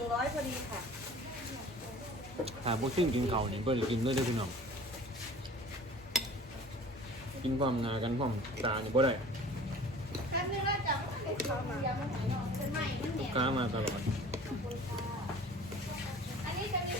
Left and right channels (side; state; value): both; normal; correlation 0.45